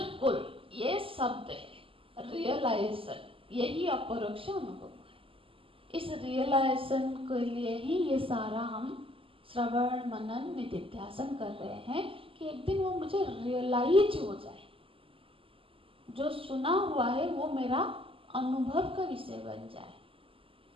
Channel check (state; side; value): late; left; 0.26 ms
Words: ये शब्द है रियलाइजेशन, यही अपरोक्ष अनुभव है। इस रियलाइजेशन के लिए ही ये सारा हम श्रवण मनन निधिध्यासन कर रहे हैं कि एक दिन वो मुझे रियलाइज हो जाए, जो सुना हुआ है वो मेरा अनुभव का विषय बन जाए।